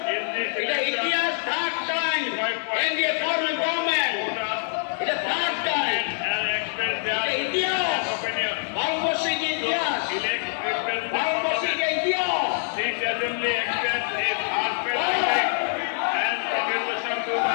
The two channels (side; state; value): right; silent; digital silence